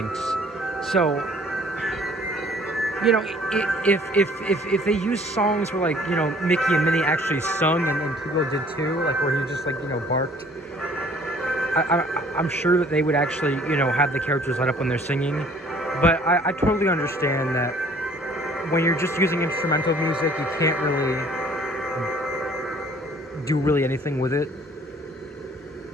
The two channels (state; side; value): normal; both; correlation 0.55